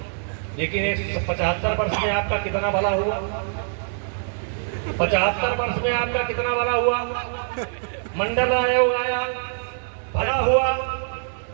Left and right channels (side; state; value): left; silent; 63 dB below the other